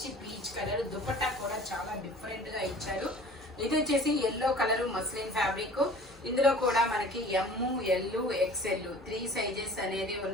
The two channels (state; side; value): normal; both; correlation 0.45